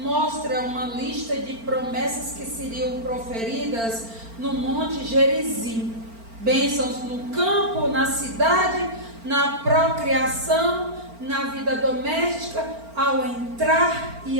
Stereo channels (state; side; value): late; left; 4.4 ms